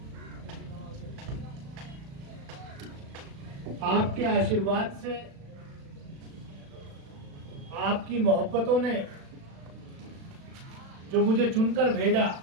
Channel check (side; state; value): left; late; 36 ms